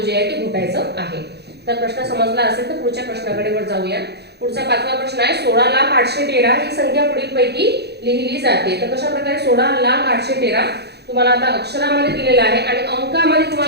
जे आहे ते घोटायचं आहे. तर प्रश्न समजला असेल तर पुढच्या प्रश्नाकडे जाऊया. पुढचा 5वा प्रश्न आहे, 16,813 ही संख्या पुढीलपैकी लिहिली जाते. तर कशा प्रकारे 16,813 तुम्हाला आता अक्षरामध्ये दिलेला आहे आणि अंकामध्ये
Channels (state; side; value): late; left; 0.48 ms